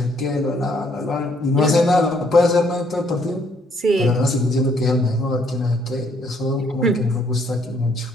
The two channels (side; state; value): both; normal; correlation 0.67